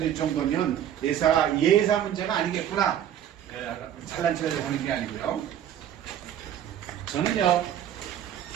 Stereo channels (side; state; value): left; quieter; 10.3 dB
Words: 정도면 예사 문제가 아니겠구나. 잘난 척을 하는 게 아니고요. 저는요,